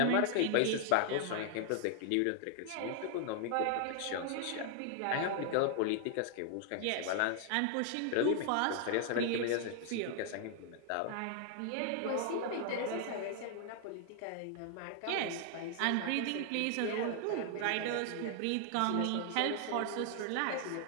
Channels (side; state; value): both; different; correlation 0.00